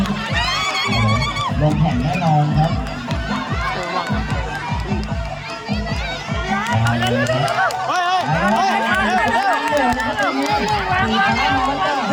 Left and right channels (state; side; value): identical; both; correlation 1.00